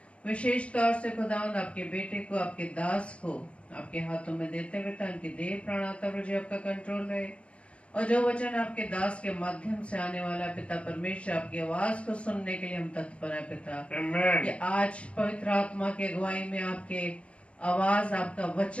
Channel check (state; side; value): late; right; 0.061 ms